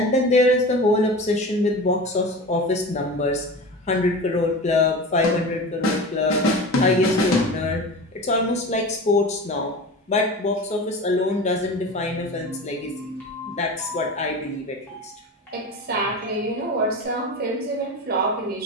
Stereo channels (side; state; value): both; normal; correlation 0.31